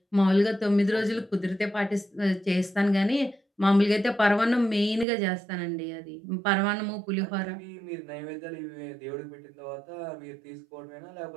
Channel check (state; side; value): drops out; left; at 5.1 s